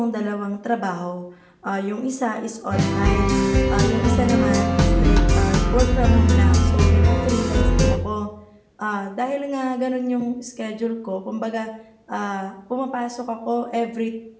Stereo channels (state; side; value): identical; both; correlation 1.00